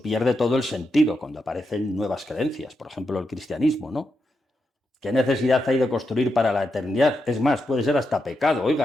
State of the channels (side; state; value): both; normal; correlation 0.85